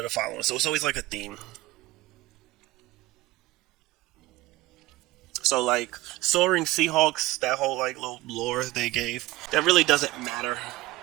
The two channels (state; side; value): quieter; left; 18.8 dB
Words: the following. So it's always like a theme. So like Soaring Seahawks, that whole like little lore they gave, that really doesn't matter.